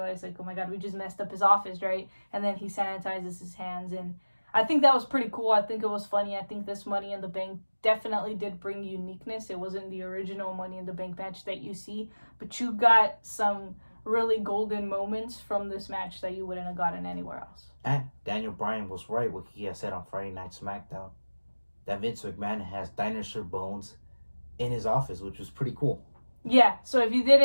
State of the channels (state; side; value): inverted; both; correlation -1.00